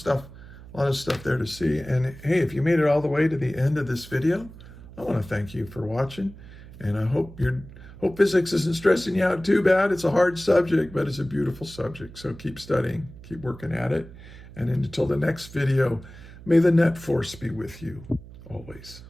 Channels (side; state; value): right; noise; hum, 17 dB below the sound